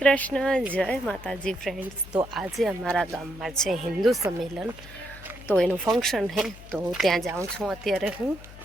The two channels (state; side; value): noise; left; hum, 17 dB below the sound